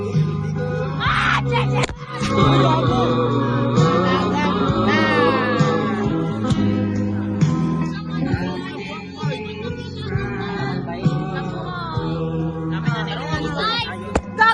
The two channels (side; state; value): both; identical; correlation 1.00